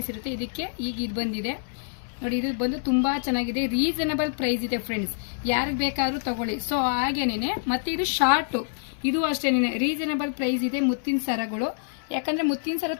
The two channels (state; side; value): silent; right; 61 dB below the other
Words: ಇರುತ್ತೆ. ಇದಕ್ಕೆ ಈಗ ಇದು ಬಂದಿದೆ ನೋಡಿ. ಇದು ಬಂದು ತುಂಬಾ ಚೆನ್ನಾಗಿದೆ, ರೀಸನಬಲ್ ಪ್ರೈಸ್ ಇದೆ ಫ್ರೆಂಡ್ಸ್. ಯಾರಿಗೆ ಬೇಕಾದ್ರೂ ತಗೊಳ್ಳಿ. ಸೊ ಹಾಗೇನೆ ಮತ್ತೆ ಇದು ಶಾರ್ಟ್, ಇದು ಅಷ್ಟೇನೆ ರೀಸನಬಲ್ ಪ್ರೈಸ್ ಇದೆ ಮುತ್ತಿನ ಸರಗಳು. ಯಾಕಂದ್ರೆ ಮುತ್ತಿನ ಸರ